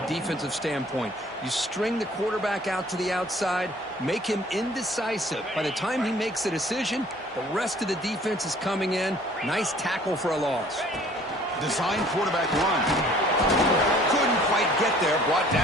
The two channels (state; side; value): normal; both; correlation 0.54